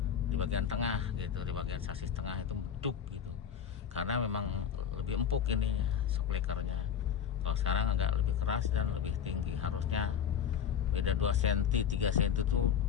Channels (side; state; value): right; quieter; 8.1 dB